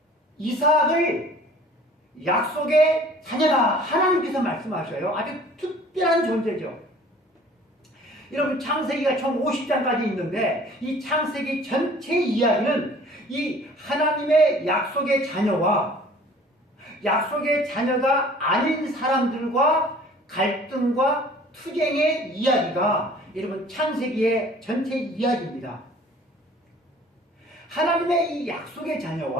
이삭을 약속의 자녀라 하나님께서 말씀하셔요. 아주 특별한 존재죠. 여러분 창세기가 총 50장까지 있는데 이 창세기 전체 이야기는 이 하나님의 약속의 자녀와 약속의 자녀가 아닌 사람들과 갈등과 투쟁의 이야기가 여러분 창세기의 전체 이야기입니다. 하나님의 이 약속의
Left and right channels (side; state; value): both; normal; correlation 0.50